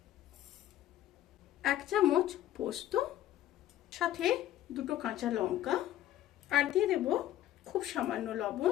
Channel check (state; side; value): quieter; right; 13.1 dB